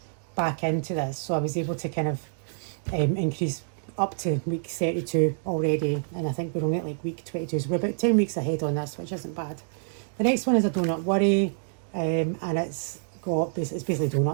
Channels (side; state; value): left; silent; digital silence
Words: back into this. So I was able to kind of increase up to week 32 already, and I think we're only at like week 22, so we're about 10 weeks ahead on this, which isn't bad. The next one is a Donut Worry, and it's basically